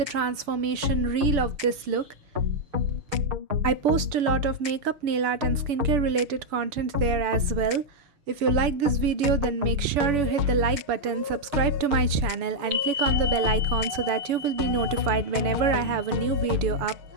transformation reel of this look. I post a lot of makeup, nail art and skincare related content there as well. If you like this video, then make sure you hit the like button, subscribe to my channel and click on the bell icon so that you will be notified whenever I have a new video up.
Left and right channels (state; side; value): late; left; 7.0 ms